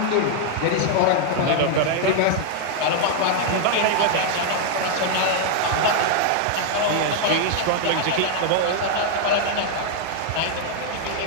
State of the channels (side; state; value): both; different; correlation 0.00